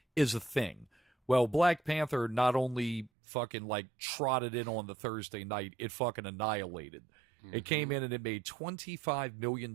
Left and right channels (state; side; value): drops out; left; at 3.1 s